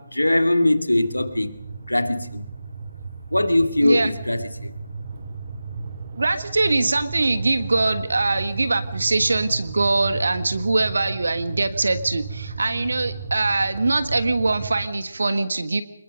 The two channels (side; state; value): both; inverted; correlation -0.95